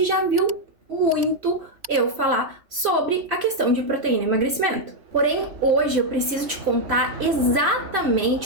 já viu muito eu falar sobre a questão de proteína e emagrecimento. Porém, hoje eu preciso te contar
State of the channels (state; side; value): late; left; 3.1 ms